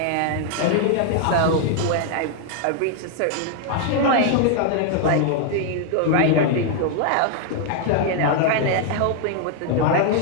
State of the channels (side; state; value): both; different; correlation 0.00